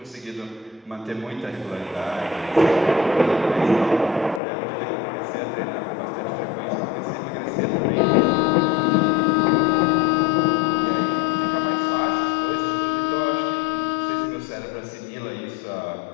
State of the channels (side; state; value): right; drops out; at 4.4 s